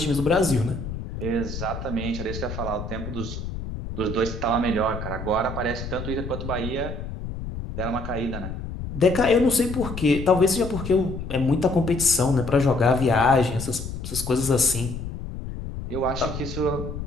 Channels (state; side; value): noise; left; rumble, 7 dB below the sound